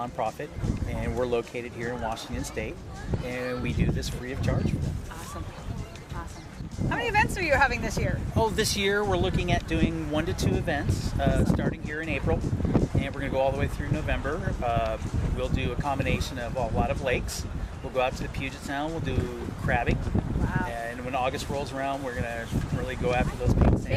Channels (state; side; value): identical; both; correlation 1.00